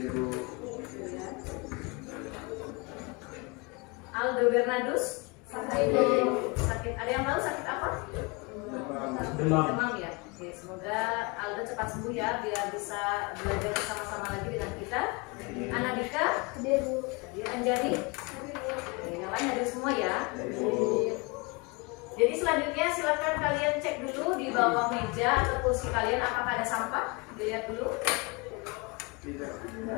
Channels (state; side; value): quieter; right; 28.5 dB